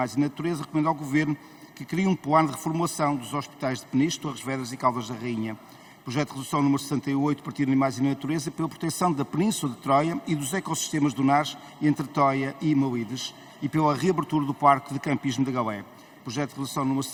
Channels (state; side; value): identical; both; correlation 1.00